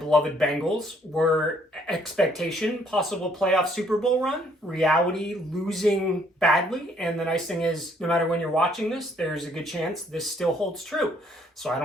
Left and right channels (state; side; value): normal; both; correlation 0.66